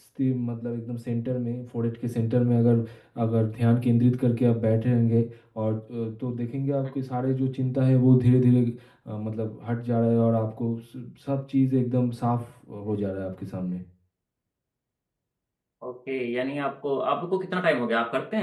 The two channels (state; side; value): identical; both; correlation 1.00